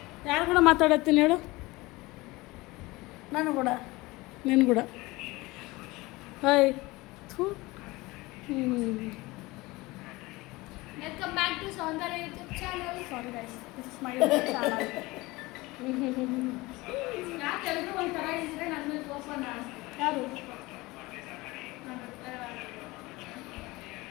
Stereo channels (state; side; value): quieter; right; 21.5 dB